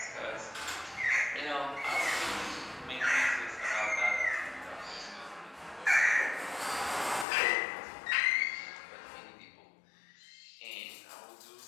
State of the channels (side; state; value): right; drops out; at 7.2 s